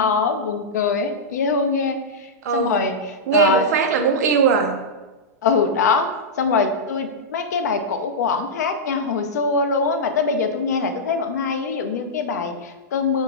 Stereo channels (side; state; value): both; normal; correlation -0.10